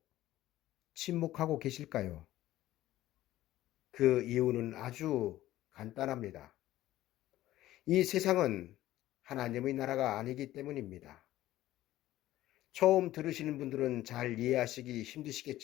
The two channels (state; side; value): quieter; right; 14.9 dB